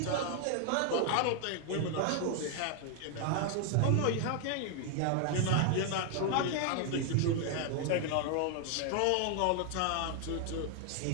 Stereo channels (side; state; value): both; different; correlation 0.00